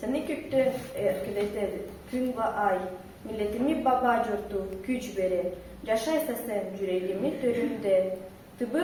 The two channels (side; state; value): both; identical; correlation 1.00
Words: kökten erkileter gün ve ay. Milletimi baba curtu güç verir. Yaşaysa sen yüreğimi töründe.